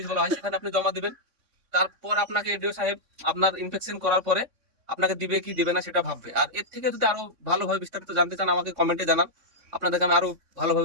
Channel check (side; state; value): left; late; 3.6 ms